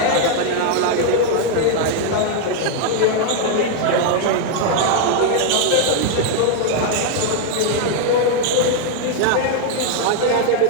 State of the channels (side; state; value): both; different; correlation 0.00